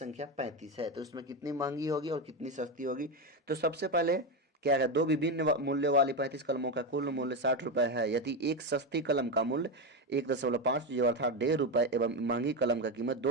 35 है, तो इसमें कितनी महंगी होगी और कितनी सस्ती होगी। तो सबसे पहले क्या है, दो विभिन्न मूल्य वाली 35 कलमों का कुल मूल्य 60 रुपये है। यदि एक सस्ती कलम का मूल्य 1.5 जो अर्थात 1.5 रुपये एवं महंगी कलम का कीमत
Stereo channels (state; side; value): normal; both; correlation 0.12